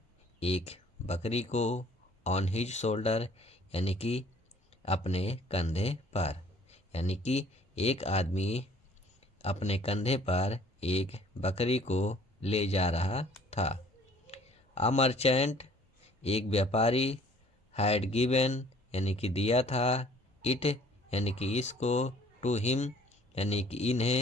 एक बकरी को, ऑन हिज शोल्डर यानी कि अपने कंधे पर, यानी कि एक आदमी अपने कंधे पर एक बकरी को ले जा रहा था। आ मर्चेंट एक व्यापारी, हैड गिवन यानी कि दिया था, इट यानी कि इसको, टू हिम यानी कि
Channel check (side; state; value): both; normal; correlation 0.56